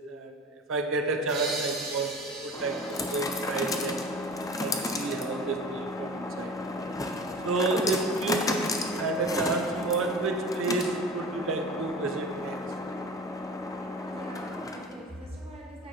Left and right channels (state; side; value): normal; both; correlation 0.37